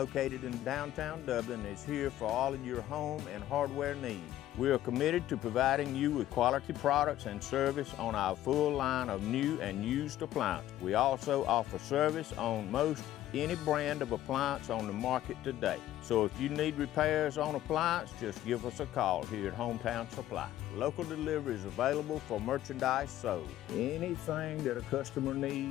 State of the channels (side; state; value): right; quieter; 13.4 dB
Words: in downtown Dublin, is here for all of your home and hardware needs. We are committed to providing you with quality products and service on our full line of new and used appliances. We also offer service on most any brand of appliance on the market today. So if you need repairs on appliance, just give us a call here at Hometown Supply. Local delivery is available for merchandise sold. Anything that a customer